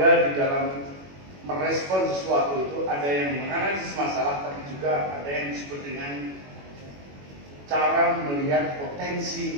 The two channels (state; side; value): late; left; 21 ms